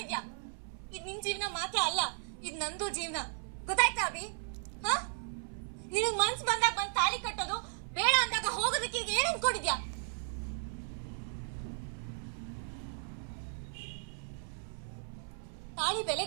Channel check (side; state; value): left; silent; 54 dB below the other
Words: ಇದ್ ನಿನ್ ಜೀವನ ಮಾತ್ರ ಅಲ್ಲ, ಇದ್ ನಂದು ಜೀವನ. ಗೊತ್ತಾಯ್ತಾ ಅಭಿ? ನಿನಗ್ ಮನ್ಸ್ ಬಂದಾಗ ಬಂದ್ ತಾಳಿ ಕಟ್ಟೋದು, ಬೇಡ ಅಂದಾಗ ಹೋಗೋದಕ್ಕೆ ಈಗ ಏನ್ ಅನ್ಕೊಂಡಿದ್ಯಾ? ತಾಳಿ ಬೆಲೆ